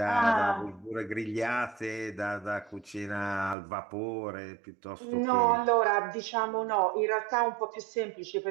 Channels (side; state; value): left; drops out; at 3.6 s